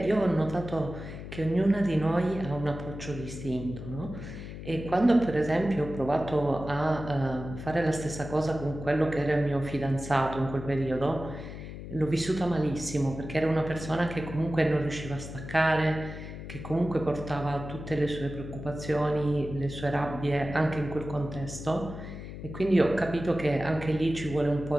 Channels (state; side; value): noise; left; hum, 10 dB below the sound